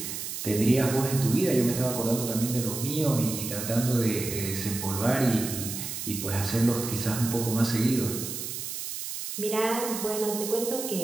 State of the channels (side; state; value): right; noise; hiss, 6 dB below the sound